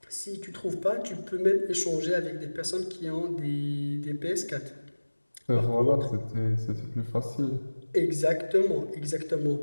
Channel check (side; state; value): both; inverted; correlation -1.00